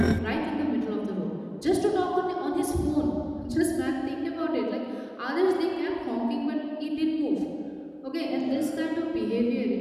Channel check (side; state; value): both; identical; correlation 1.00